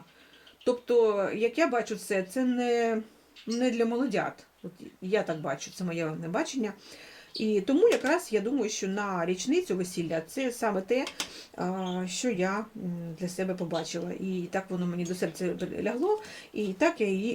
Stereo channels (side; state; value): both; identical; correlation 1.00